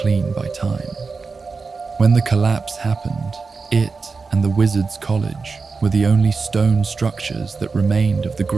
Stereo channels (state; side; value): quieter; left; 4.5 dB